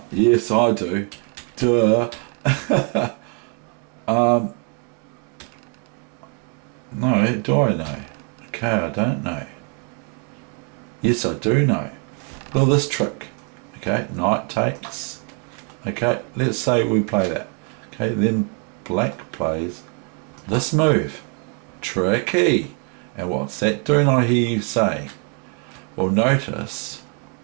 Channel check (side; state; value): left; quieter; 38.3 dB